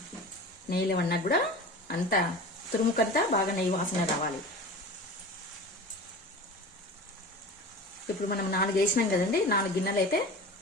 నెయ్యిలో వన్నా కూడా అంతా తురుముకంతా బాగా నెయ్యి వాసన రావాలి. ఇప్పుడు మనం 4 వేసినాం కదండి. 4 గిన్నెలు అయితే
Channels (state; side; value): normal; both; correlation 0.34